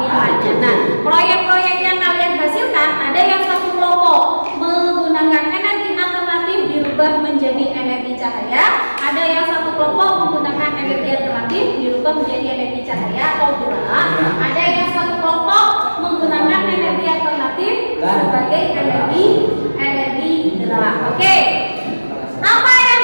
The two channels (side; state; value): both; inverted; correlation -1.00